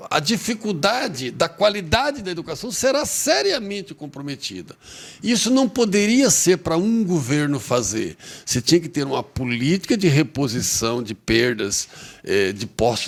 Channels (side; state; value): both; identical; correlation 1.00